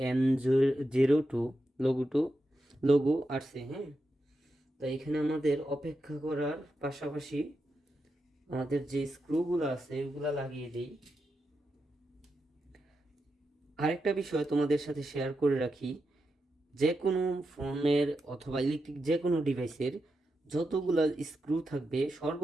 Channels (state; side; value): normal; both; correlation 0.87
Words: M02 লোগো আসছে। হ্যাঁ, তো এখানে আমাদের অপেক্ষা করার পাশাপাশি আমাদের যে স্ক্রুগুলো আছে ওগুলা লাগিয়ে দিই। আরেকটা বিষয় তোমাদের সাথে শেয়ার করে রাখি, যে কোনো ফোনের অথবা ইলেকট্রিক যে কোনো ডিভাইসের যতগুলো স্ক্রু থাকবে